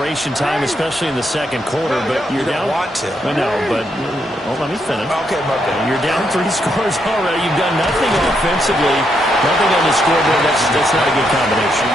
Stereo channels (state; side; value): normal; both; correlation 0.78